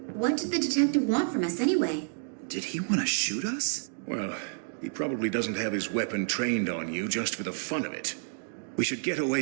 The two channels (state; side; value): silent; left; digital silence